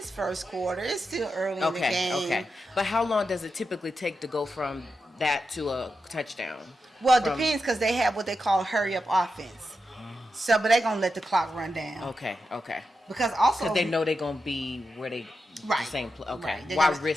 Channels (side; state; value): both; normal; correlation 0.88